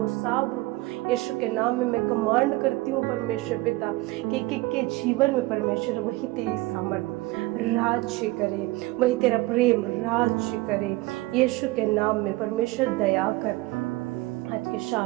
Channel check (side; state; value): left; quieter; 20.6 dB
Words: साब यीशु के नाम में मैं कमांड करती हूँ परमेश्वर पिता कि एक एक के जीवन में परमेश्वर वही तेरी सामर्थ्य राज्य करे, वही तेरा प्रेम राज्य करे। यीशु के नाम में परमेश्वर दया कर। आज के